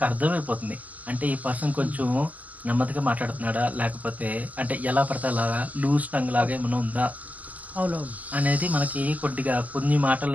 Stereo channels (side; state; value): left; late; 0.078 ms